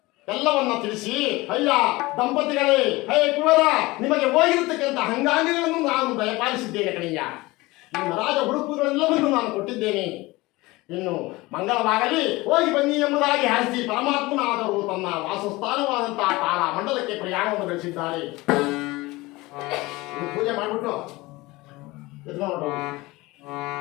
ಎಲ್ಲವನ್ನ ತಿಳಿಸಿ, ಅಯ್ಯ ದಂಪತಿಗಳೇ, ಹೇ ಕುವರ, ನಿಮಗೆ ಹೋಗಿರತಕ್ಕಂಥ ಅಂಗಾಂಗಗಳನ್ನು ನಾನು ದಯಪಾಲಿಸಿದ್ದೇನೆ ಕಣಯ್ಯ. ನಿಮ್ಮ ರಾಜ ಹುಡುಕುಗಳೆಲ್ಲವನ್ನೂ ನಾನು ಕೊಟ್ಟಿದ್ದೇನೆ. ಇನ್ನು ಮಂಗಳವಾಗಲಿ, ಹೋಗಿ ಬನ್ನಿ ಎಂಬುದಾಗಿ ಹರಿಸಿ ಪರಮಾತ್ಮನಾದರೂ ತನ್ನ ವಾಸಸ್ಥಾನವಾದಂತಹ ತಾರ ಮಂಡಲಕ್ಕೆ ಪ್ರಯಾಣವನ್ನು ಬೆಳೆಸಿದ್ದಾರೆ. ಪೂಜೆ ಮಾಡಿಬಿಟ್ಟು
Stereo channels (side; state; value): right; quieter; 21.1 dB